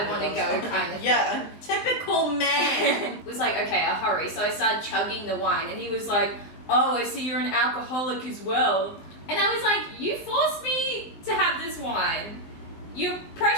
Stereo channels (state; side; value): late; right; 19 ms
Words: want to go, kind of. Yeah, typical man. Was like, okay, I'll hurry. So I started chugging the wine, and he was like, "Oh, I see you're an alcoholic as well." And I was like, "You forced me to have this wine. You're